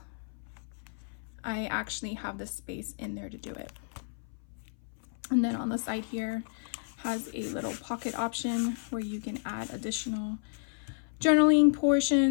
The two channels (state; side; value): silent; right; 57 dB below the other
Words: I actually have the space in there to do it. And then on the side here has a little pocket option where you can add additional journaling